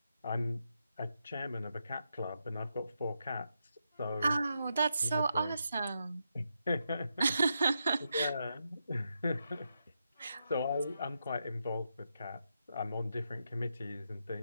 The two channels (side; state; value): both; inverted; correlation -0.84